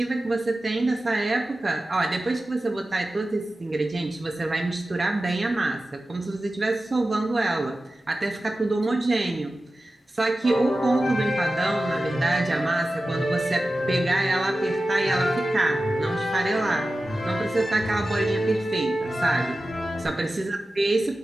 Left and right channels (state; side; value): normal; both; correlation 0.94